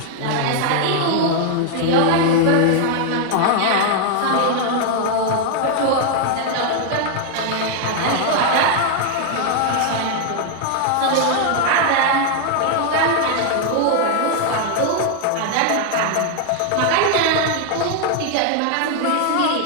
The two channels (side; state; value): both; different; correlation 0.00